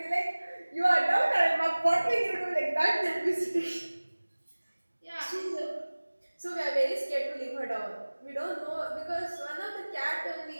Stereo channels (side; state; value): both; inverted; correlation -1.00